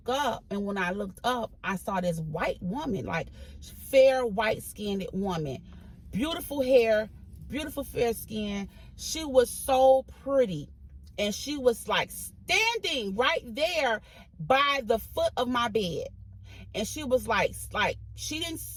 up, and when I looked up, I saw this white woman, like fair, white-skinned woman, beautiful hair, beautiful fair skin. She was so pretty, and she was like standing right there by the foot of my bed, and she was like she didn't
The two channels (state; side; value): identical; both; correlation 1.00